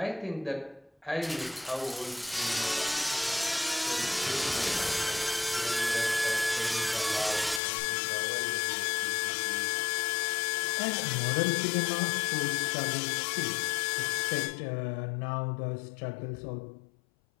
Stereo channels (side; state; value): right; drops out; at 7.6 s